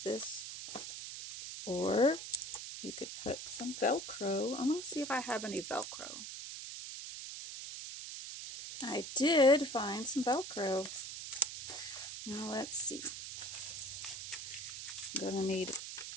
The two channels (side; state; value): right; noise; hiss, 8 dB below the sound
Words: this. Or you could put some Velcro. I'm going to see if I have any Velcro. I did find some Velcro. Now let's see. I'm going to need